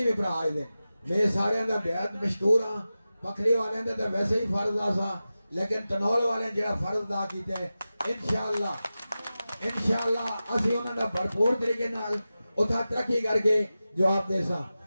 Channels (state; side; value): inverted; both; correlation -0.94